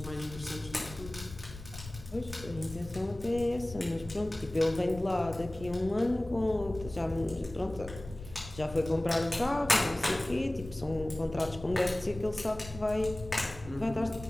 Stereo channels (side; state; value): left; noise; rumble, 14 dB below the sound